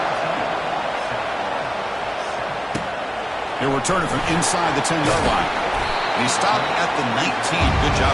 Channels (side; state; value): both; identical; correlation 1.00